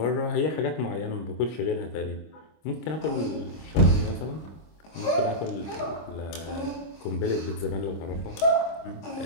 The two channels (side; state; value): right; late; 25 ms